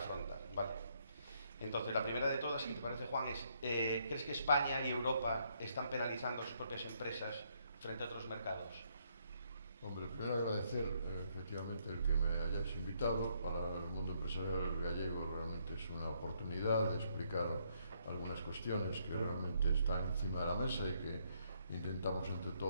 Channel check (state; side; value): inverted; both; correlation -0.72